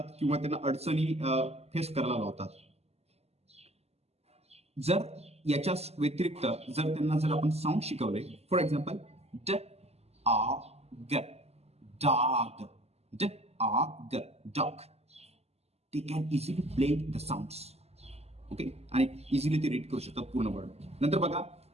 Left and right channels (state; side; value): late; left; 0.30 ms